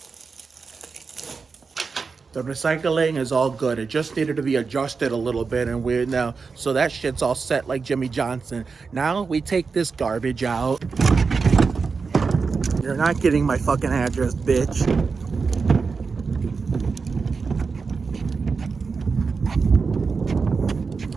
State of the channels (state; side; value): quieter; left; 4.9 dB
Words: The recycling is all good. It just needed to be adjusted a little bit, and we're now, so that shit's all set like Jimmy Johnson. Now we take this garbage out. You're not getting my fucking address, bitch.